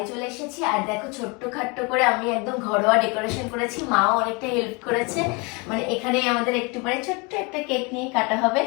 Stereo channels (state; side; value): quieter; right; 29.4 dB